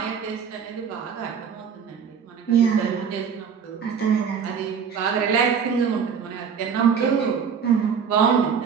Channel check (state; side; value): quieter; left; 6.8 dB